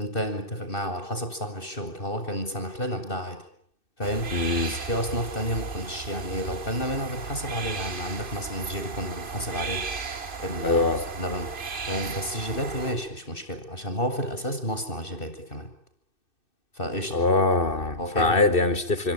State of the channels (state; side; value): late; right; 2.6 ms